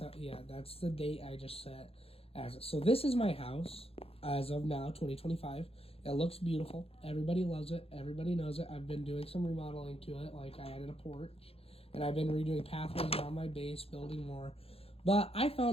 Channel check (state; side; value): late; right; 0.28 ms